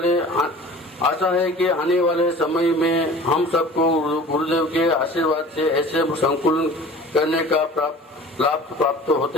आशा है कि आने वाले समय में हम सबको गुरुदेव के आशीर्वाद से ऐसे संकुलन करने का लाभ प्राप्त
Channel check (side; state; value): both; normal; correlation 0.43